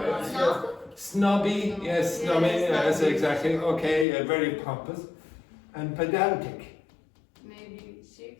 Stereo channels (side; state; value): right; drops out; at 4.0 s